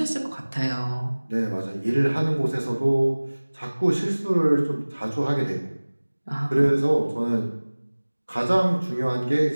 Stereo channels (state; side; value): inverted; both; correlation -1.00